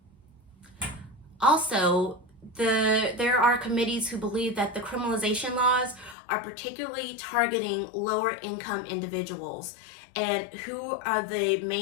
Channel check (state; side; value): drops out; right; at 6.2 s